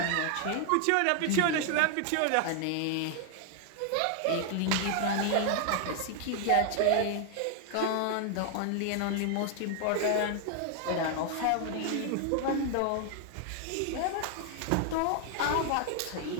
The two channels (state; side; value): different; both; correlation 0.00